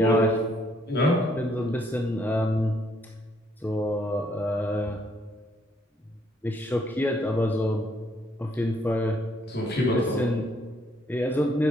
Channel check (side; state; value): both; normal; correlation 0.69